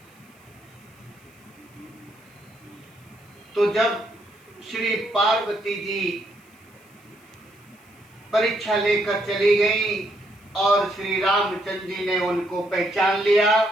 तो जब श्री पार्वती जी परीक्षा लेकर चली गई और श्री रामचंद्र जी ने उनको पहचान लिया,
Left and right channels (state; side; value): noise; left; hiss, 30 dB below the sound